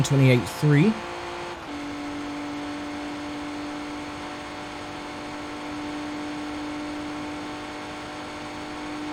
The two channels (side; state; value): both; identical; correlation 1.00